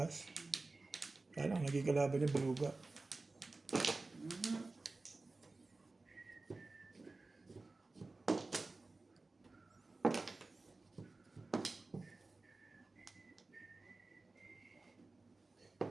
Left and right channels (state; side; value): quieter; left; 3.4 dB